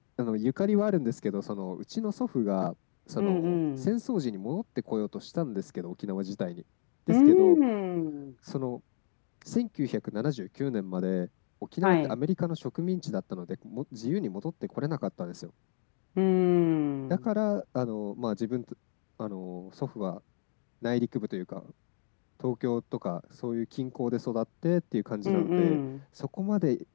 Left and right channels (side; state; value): right; silent; digital silence